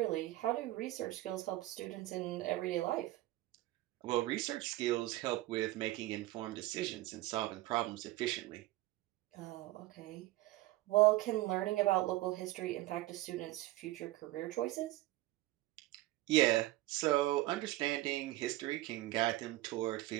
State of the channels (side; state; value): left; quieter; 17.7 dB